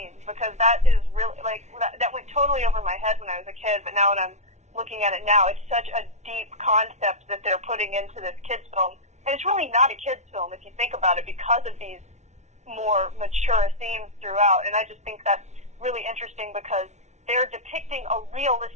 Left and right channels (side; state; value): left; late; 0.33 ms